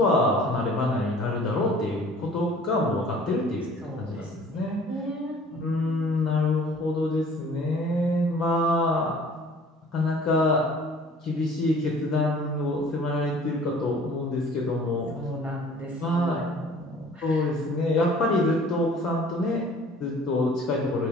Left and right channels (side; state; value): both; normal; correlation 0.50